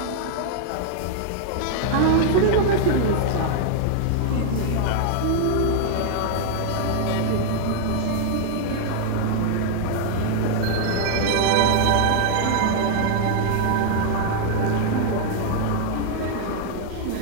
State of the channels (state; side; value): different; both; correlation 0.00